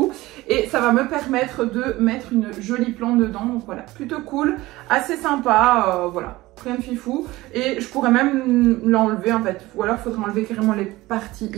Et ça va me permettre de mettre une jolie plante dedans. Donc voilà, plutôt cool, assez sympa, voilà. Rien de fifou. Et je pourrais même l'enlever en fait. Ou alors il faudrait enlever carrément les parties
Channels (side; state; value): left; quieter; 18.8 dB